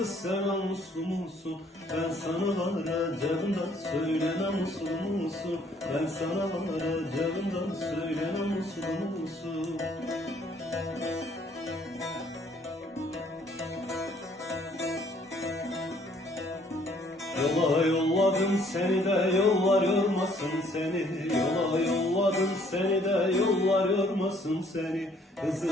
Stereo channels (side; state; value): both; normal; correlation 0.62